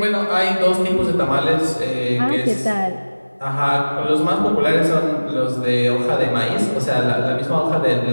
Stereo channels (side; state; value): both; inverted; correlation -1.00